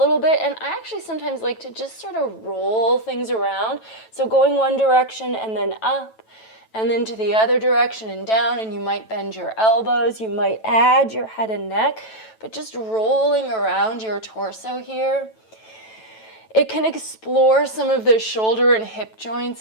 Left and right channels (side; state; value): right; late; 9.1 ms